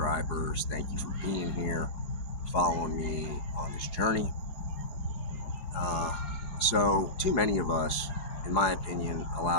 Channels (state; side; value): late; right; 5.8 ms